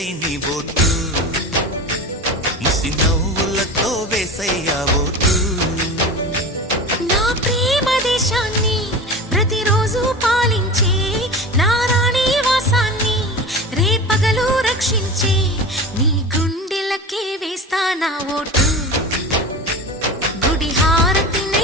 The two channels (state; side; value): normal; both; correlation 0.31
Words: నీ ఓటు, ముసి నవ్వులతో వేసయ్యా ఓటు. నా ప్రేమ దేశాన్ని ప్రతిరోజు పాలించే నా రాణి వాసాన్ని రేపగలు రక్షించే నీ గుండెలకే వేస్తా నా ఓటు, గుడి